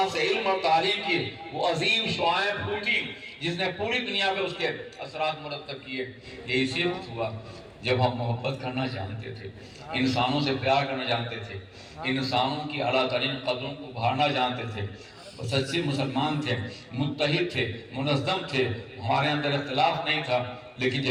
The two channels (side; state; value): both; identical; correlation 1.00